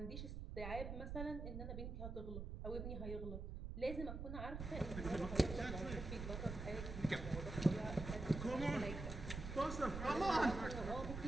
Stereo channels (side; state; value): right; noise; rumble, 6 dB below the sound